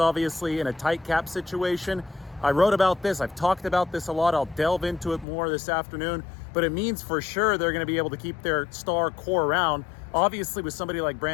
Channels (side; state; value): right; drops out; at 5.2 s